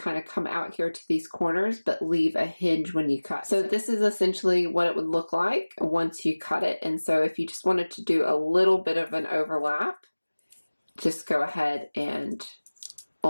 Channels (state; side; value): inverted; both; correlation -1.00